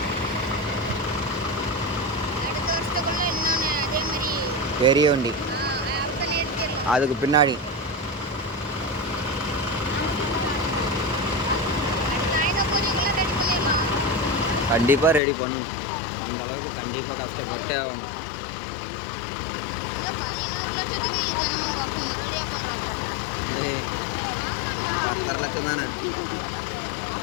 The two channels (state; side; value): drops out; right; at 15.2 s